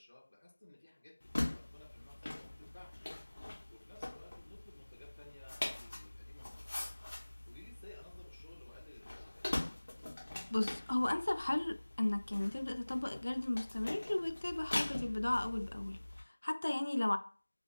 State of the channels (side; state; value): both; inverted; correlation -1.00